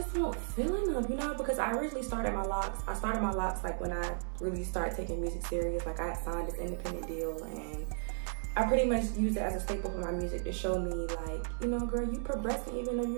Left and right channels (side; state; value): left; silent; 55 dB below the other